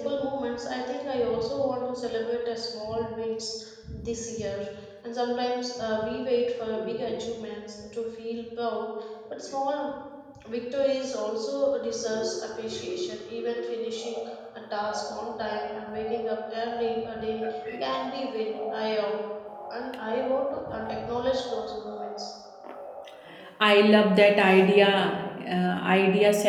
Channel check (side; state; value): both; identical; correlation 1.00